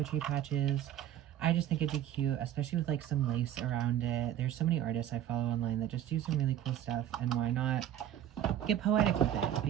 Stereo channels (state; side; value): quieter; left; 11.2 dB